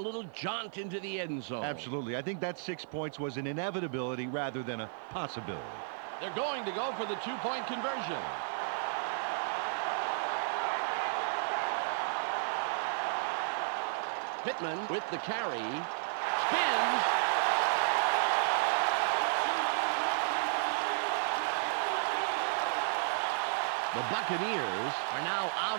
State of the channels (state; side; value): silent; left; digital silence